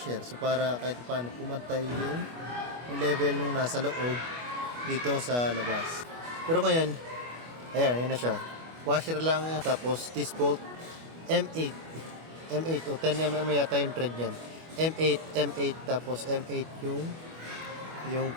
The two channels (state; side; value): late; left; 25 ms